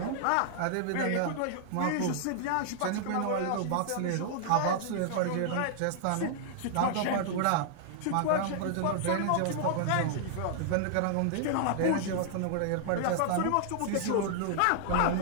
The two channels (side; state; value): both; different; correlation -0.01